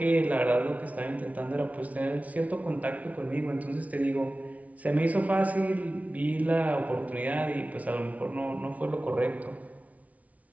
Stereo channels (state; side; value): late; left; 0.069 ms